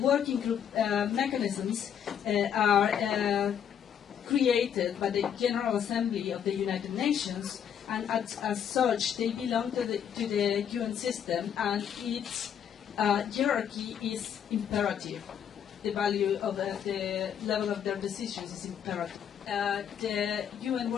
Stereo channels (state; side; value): quieter; right; 8.7 dB